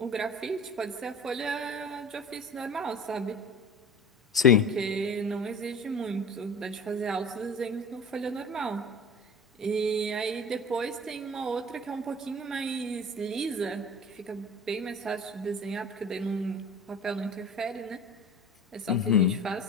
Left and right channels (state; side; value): normal; both; correlation 0.38